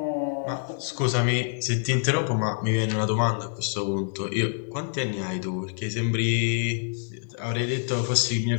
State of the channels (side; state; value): right; silent; digital silence